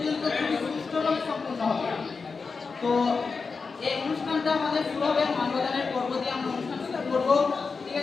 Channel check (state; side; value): quieter; right; 4.8 dB